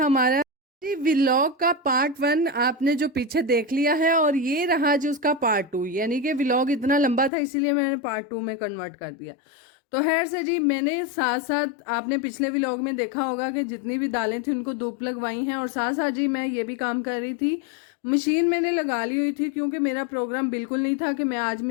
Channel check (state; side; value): drops out; right; at 7.3 s